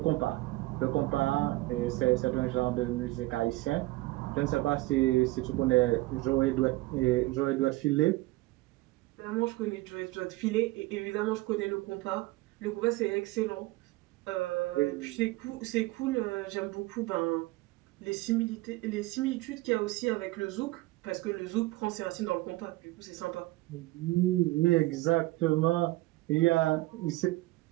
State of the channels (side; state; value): left; quieter; 19.8 dB